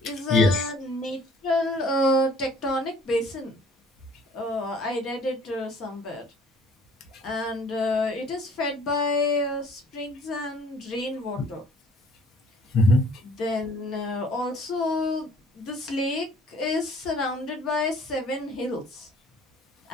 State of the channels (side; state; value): both; normal; correlation 0.55